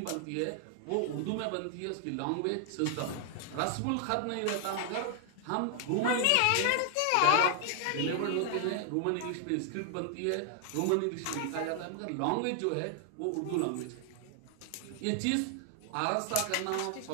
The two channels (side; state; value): both; different; correlation 0.00